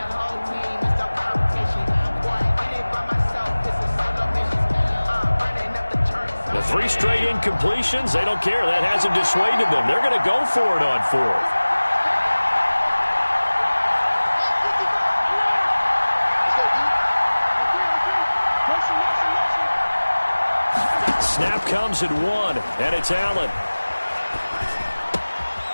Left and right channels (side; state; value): both; inverted; correlation -1.00